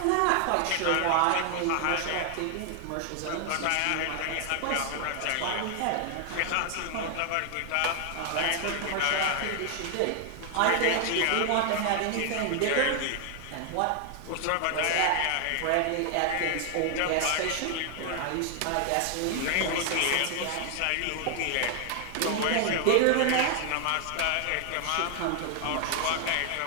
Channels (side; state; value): both; different; correlation 0.00